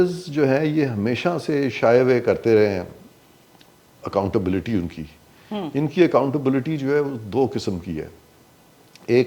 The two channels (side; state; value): both; identical; correlation 1.00